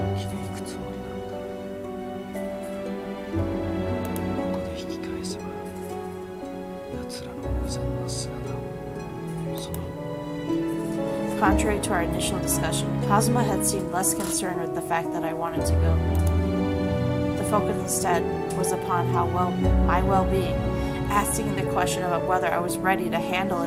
生きていくつもりなのだ。ここで引き返せば、奴らの無残な姿を、その Contrary to our initial discussion, Kazama had seemed less concerned with the fact that I wanted to go. The focus instead was upon my well-being, asking the question about whether I was ready to handle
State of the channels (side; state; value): both; identical; correlation 1.00